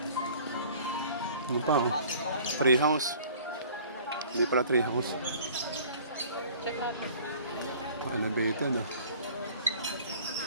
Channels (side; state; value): both; inverted; correlation -0.49